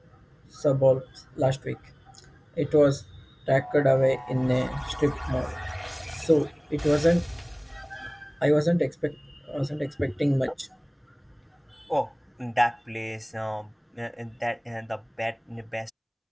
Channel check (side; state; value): both; identical; correlation 1.00